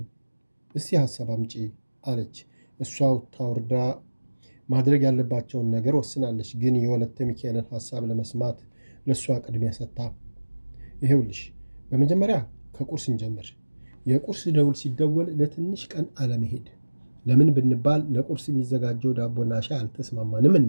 እስቲ ሀሳብ አምጪ አለች። እሷ ታውርዳ ማድረግ ያለባቸውን ነገር ወስናለች። ግን የወለተ ሚካኤልን ሀሳብ ለመስማት ለእሷ ቅድሚያ ሰጥታ፣ ይሄውልሽ በመጀመሪያ ከቁርስ እንጀምር። የቁርስ ደውል ሲደወል ለትንሽ ቀን አለመሄድ። ለምን ብንባል ለቁርስ የሚዘጋጀው ዳቦና ሻይ አልተስማማንም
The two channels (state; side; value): inverted; both; correlation -1.00